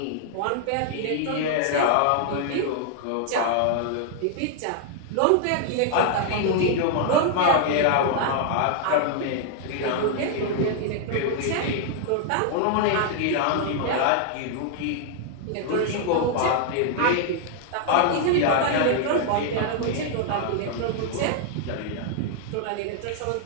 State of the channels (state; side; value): different; both; correlation 0.00